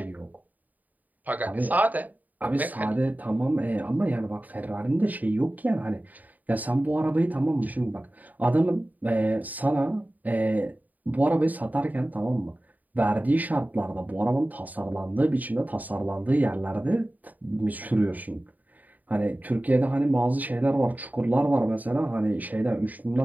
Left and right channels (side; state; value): left; late; 0.080 ms